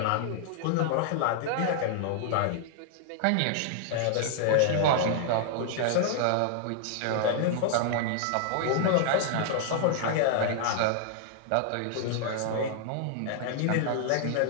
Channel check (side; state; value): both; different; correlation -0.01